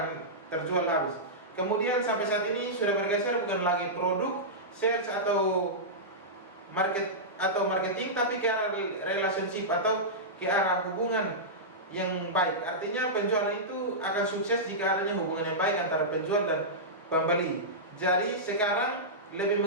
terjual habis. Kemudian sampai saat ini sudah bergeser bukan lagi produk, sales atau marketing, tapi ke arah relationship atau ke arah hubungan yang baik. Artinya penjualan itu akan sukses jika adanya hubungan yang baik antara penjual dan pembeli. Jadi sekarang lebih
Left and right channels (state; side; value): normal; both; correlation -0.13